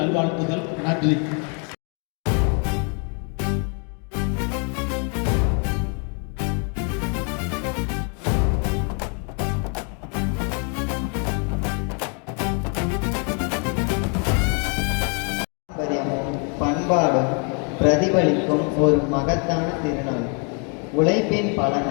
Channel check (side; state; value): right; quieter; 37.7 dB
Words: நல்வாழ்த்துகள். நன்றி. பண்பாடும் பிரதிபலிக்கும் ஒரு மகத்தான திருநாள். உழைப்பின்